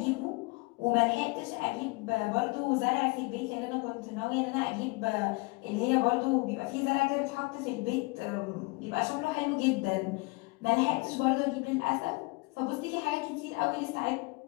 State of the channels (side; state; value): right; quieter; 26.8 dB